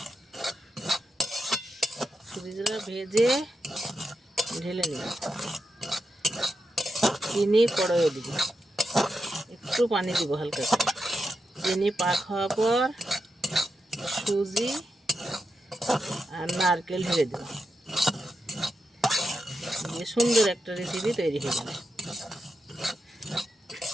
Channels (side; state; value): both; normal; correlation 0.87